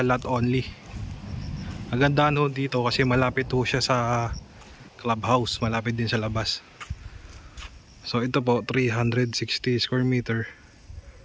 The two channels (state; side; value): identical; both; correlation 1.00